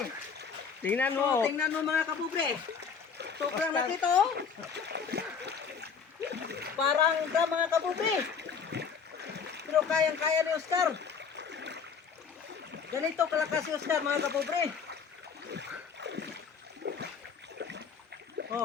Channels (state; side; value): quieter; right; 6.2 dB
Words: Tingnan mo. So, tingnan mo mga kapobre. Sobrang laki to. Parang drum mga kapobre. Pero kayang-kaya ni Oscar. Ganito kalakas si Oscar mga kapobre.